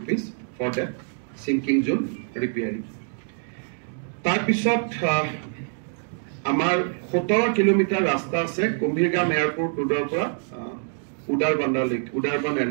for that sinking zone repairing. ইয়াৰ পিছত আমাৰ 17 কিলোমিটাৰ ৰাস্তা আছে কুম্ভীৰগাম এয়াৰপোৰ্ট ৰোডৰ পৰা উদাৰবন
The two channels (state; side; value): silent; left; 58 dB below the other